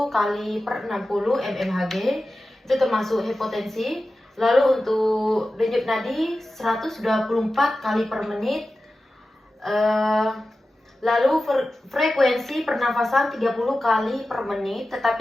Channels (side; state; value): both; normal; correlation 0.94